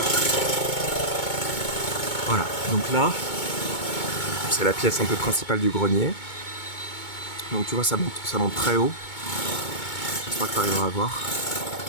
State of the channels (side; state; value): right; late; 2.2 ms